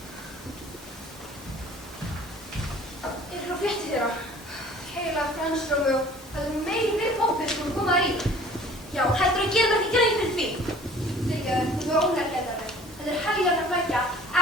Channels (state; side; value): normal; both; correlation 0.50